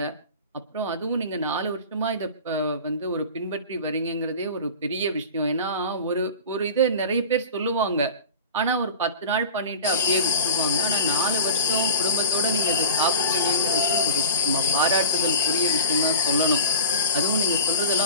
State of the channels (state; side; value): inverted; both; correlation -0.36